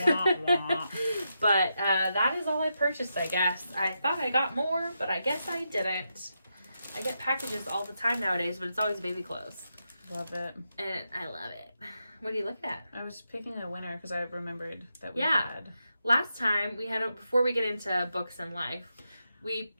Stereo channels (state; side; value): inverted; both; correlation -0.85